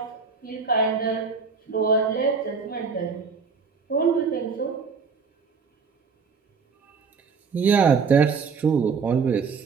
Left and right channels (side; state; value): left; quieter; 5.3 dB